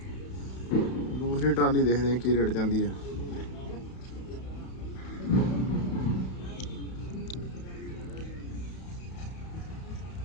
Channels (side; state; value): right; late; 31 ms